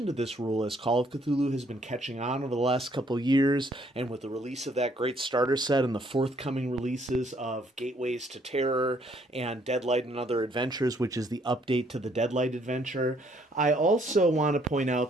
to this rule, as Call of Cthulhu has been catching on over the last couple of years, and with the release of that great starter set and the forthcoming releases of Gateways to Terror and Deadlight and Other Adventures, which is the update to the Deadlight adventure. I also want to point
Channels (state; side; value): normal; both; correlation 0.66